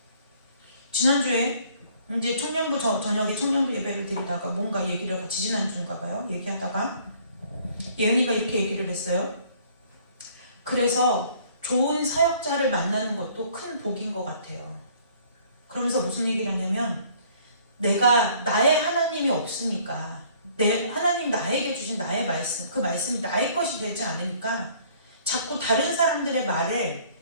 지난주에 이제 청년부 저녁에 청년부 예배를 드리다가 뭔가 얘기를 같이 지난주인가 봐요. 얘기하다가 예은이가 이렇게 얘기를 했어요. 그래서 좋은 사역자를 만나는 것도 큰 복인 것 같아요. 그러면서 무슨 얘기를 하냐면 내가 나의 하나님이 없으니까 하나님 나에게 주신 나의 말씀, 그 말씀이 나의 것이 되지 않으니까 자꾸 다른 사람들의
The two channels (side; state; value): both; inverted; correlation -0.58